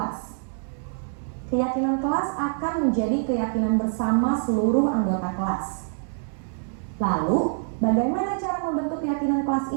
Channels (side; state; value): left; silent; 61 dB below the other